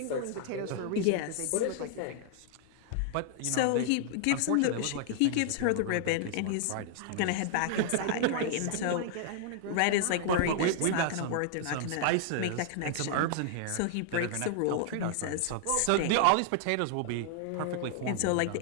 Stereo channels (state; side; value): different; both; correlation -0.01